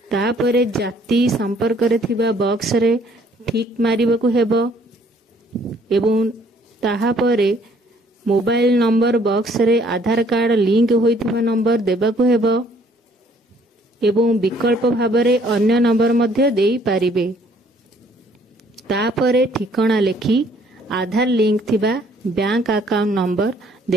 तापरे जाति संपर्क रे थिबा बॉक्स रे ठीक मारिबाकू हेबो। एवं ताहापरे मोबाइल नंबर बॉक्स रे आधार कार्ड लिंक होइथिबा नंबर देबाकू हेबो एवं विकल्प भाबरे अन्य नंबर मध्य देई पारिबे। तापरे ठिकाना लेखि आधार लिंक थिबा बैंक अकाउंट नंबर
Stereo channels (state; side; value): normal; both; correlation 0.62